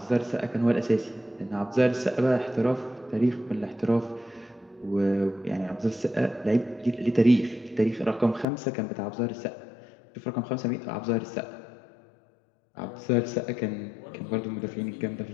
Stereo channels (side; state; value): right; drops out; at 8.5 s